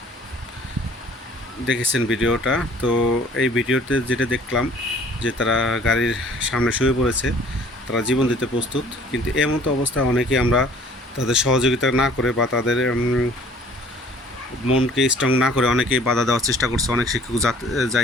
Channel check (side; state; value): both; normal; correlation 0.53